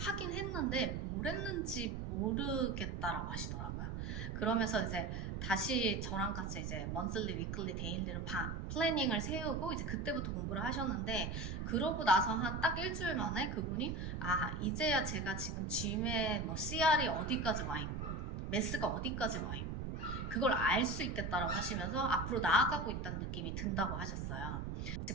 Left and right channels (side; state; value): right; noise; rumble, 4 dB below the sound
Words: 했는데 뭘 했는지 모르겠다라고 하시더라고요. 그러면서 이제 다시 저랑 같이 이제 먼슬리, 위클리, 데일리로 플래닝을 세우고 이제 그때부터 공부를 하셨는데 그러고 나서 한 딱 일주일 만에 그분이 이제야 제가 지금 GMAT 뭐 CR이 어디까지 와 있고 매스가 어디까지 와 있고 그걸 알 수 있겠다라고 하시면서 앞으로 나아가고 있다는 느낌이 든다고 하셨어요.